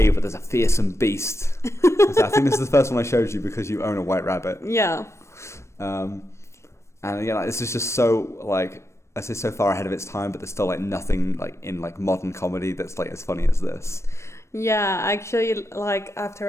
but there's a fearsome beast. So I think this is the first one I showed you because you own a white rabbit. Yeah. And again, like, this is just so, like, I say so far ahead of its time, but there's still, like, nothing, like, in, like, modern comedy that's, like, as funny as this. Yeah, actually, like,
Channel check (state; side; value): late; right; 0.13 ms